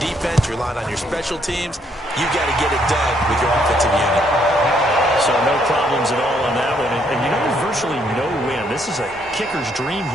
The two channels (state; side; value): normal; both; correlation 0.71